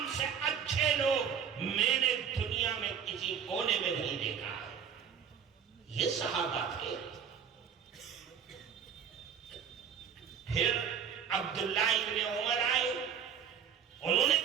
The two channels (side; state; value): left; quieter; 7.7 dB